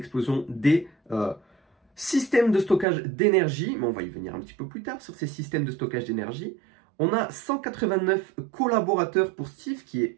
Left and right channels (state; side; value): drops out; left; at 2.9 s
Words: des systèmes de stockage d'énergie, mais on va y venir un petit peu plus tard sur ces systèmes de stockage d'énergie. On a 189 collaborateurs pour STIF, qui est